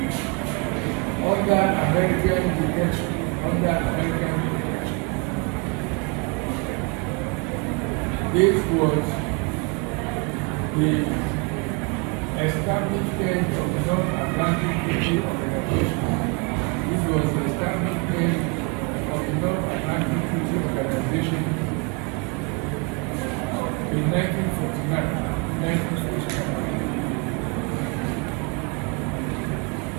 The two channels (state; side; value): quieter; left; 31.3 dB